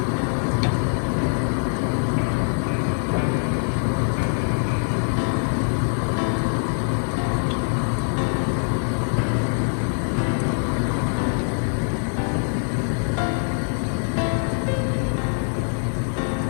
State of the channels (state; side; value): silent; right; 63 dB below the other